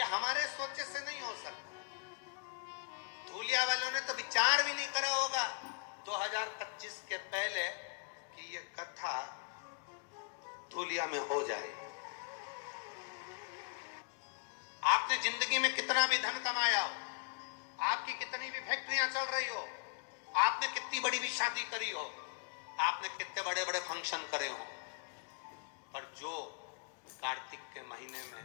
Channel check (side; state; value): right; quieter; 37.1 dB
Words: हमारे सोचे से नहीं हो सकता। धूलिया वालों ने तो विचार भी नहीं करा होगा 2025 के पहले कि ये कथा धूलिया में हो जाए। आपने जिंदगी में कितना भी धन कमाया हो, आपकी कितनी भी फैक्ट्रियां चल रही हो, आपने कितनी बड़ी भी शादी करी हो, आपने कितने बड़े बड़े फंक्शन करे हो, पर जो कार्तिक के महीने में